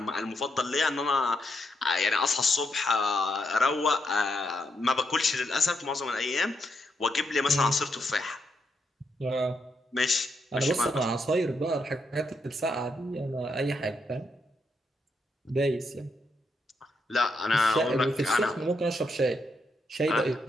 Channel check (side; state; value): both; normal; correlation 0.80